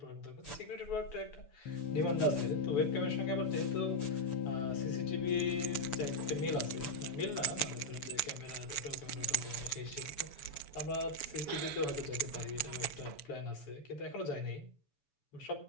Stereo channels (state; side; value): late; right; 7.0 ms